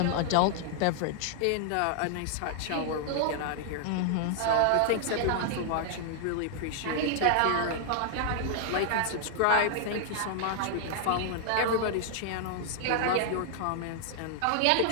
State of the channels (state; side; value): different; both; correlation 0.00